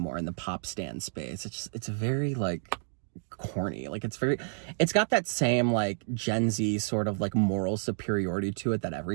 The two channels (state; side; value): silent; left; digital silence